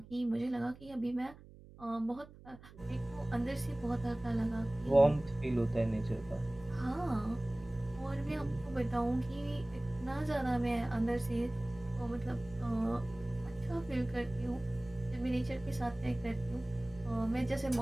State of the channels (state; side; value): noise; right; hum, 20 dB below the sound